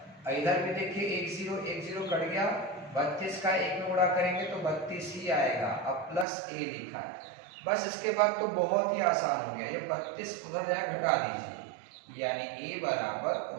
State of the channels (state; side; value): drops out; left; at 6.2 s